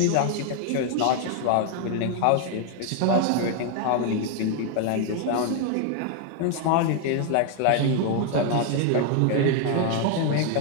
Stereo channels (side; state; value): both; different; correlation 0.01